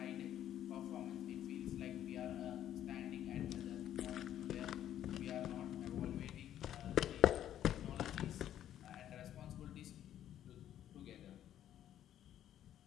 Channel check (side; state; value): right; quieter; 11.2 dB